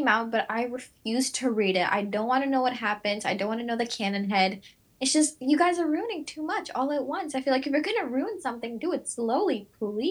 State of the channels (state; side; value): identical; both; correlation 1.00